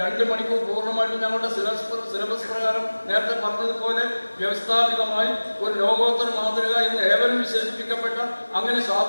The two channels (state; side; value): inverted; both; correlation -1.00